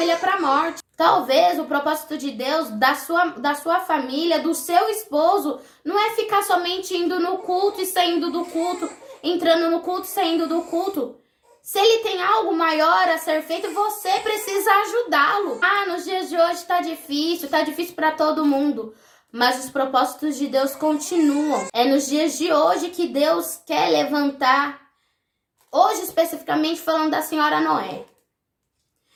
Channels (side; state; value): both; identical; correlation 1.00